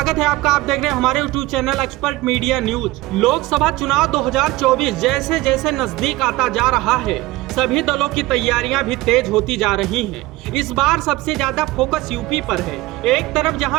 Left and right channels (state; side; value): quieter; left; 18.7 dB